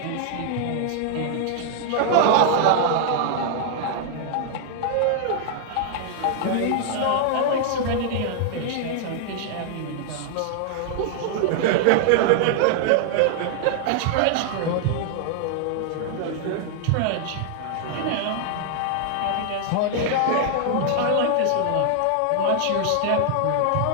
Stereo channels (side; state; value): both; different; correlation 0.00